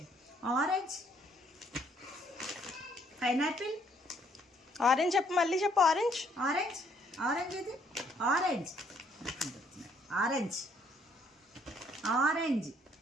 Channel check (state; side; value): normal; both; correlation 0.66